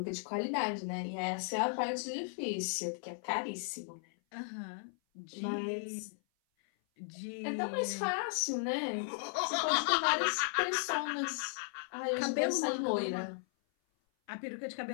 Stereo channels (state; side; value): silent; right; 54 dB below the other